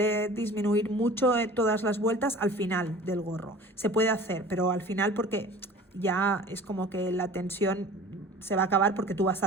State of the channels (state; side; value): normal; both; correlation 0.43